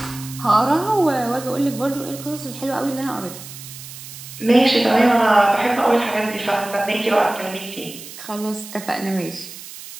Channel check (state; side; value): noise; right; hiss, 14 dB below the sound